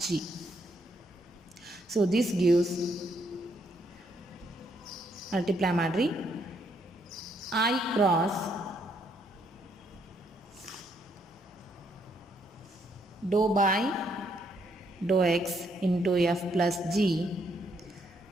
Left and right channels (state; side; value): normal; both; correlation 0.73